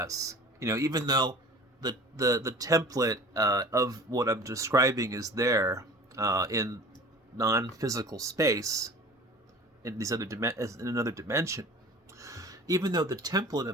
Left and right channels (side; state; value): both; normal; correlation 0.42